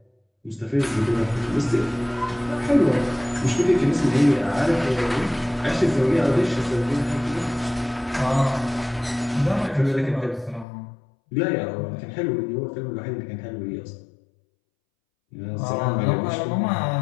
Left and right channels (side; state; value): right; drops out; at 10.7 s